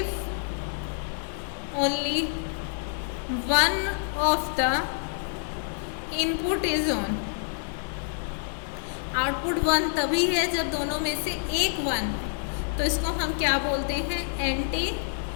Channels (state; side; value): silent; right; digital silence